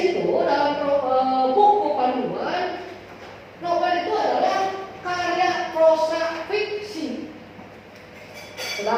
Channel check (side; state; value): both; identical; correlation 1.00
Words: dalam buku panduan, novel itu adalah karya prosa fiksi.